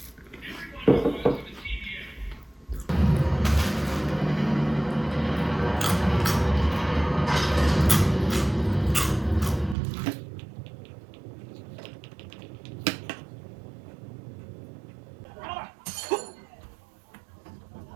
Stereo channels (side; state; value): left; drops out; at 9.8 s